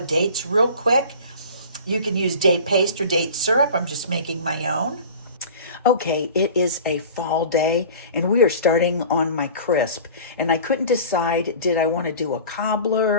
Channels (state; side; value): inverted; both; correlation -0.40